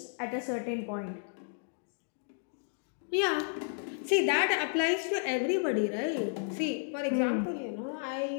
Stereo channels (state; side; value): silent; right; digital silence